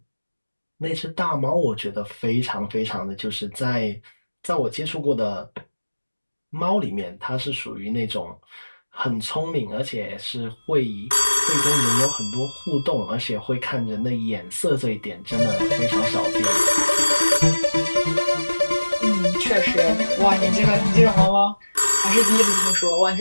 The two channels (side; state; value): both; inverted; correlation -1.00